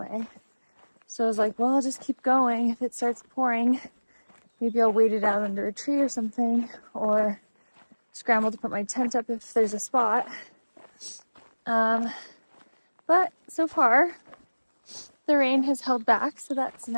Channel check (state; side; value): inverted; both; correlation -1.00